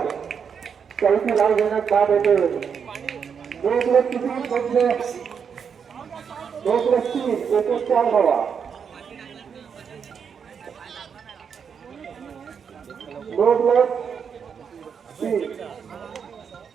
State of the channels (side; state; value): left; quieter; 6.8 dB